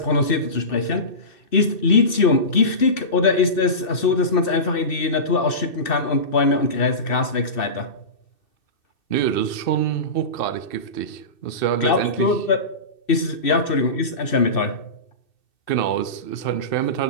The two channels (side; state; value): right; late; 2.6 ms